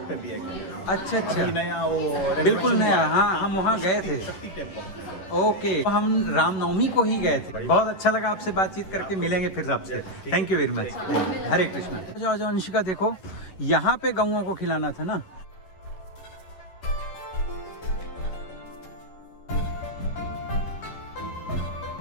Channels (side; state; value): right; late; 11 ms